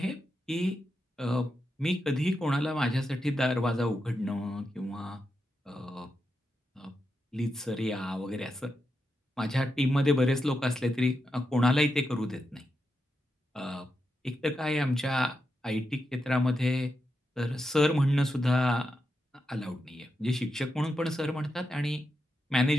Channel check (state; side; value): normal; both; correlation 0.86